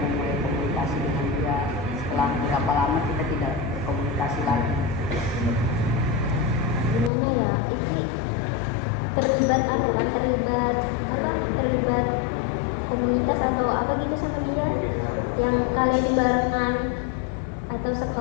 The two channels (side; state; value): right; drops out; at 7.1 s